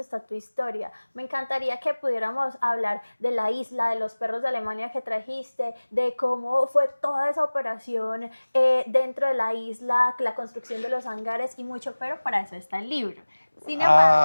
tu historia. Me encantaría que pudiéramos hablar de la isla, de los perros de Alemania que trajiste, de cómo fue toda esa operación dentro de la isla, la construcción de los hangares y mucho, pero para eso está el libro. Sin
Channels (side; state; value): both; inverted; correlation -1.00